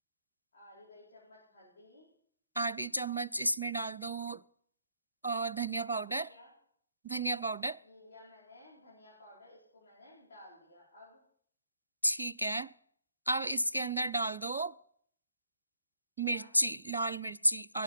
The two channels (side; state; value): both; inverted; correlation -0.74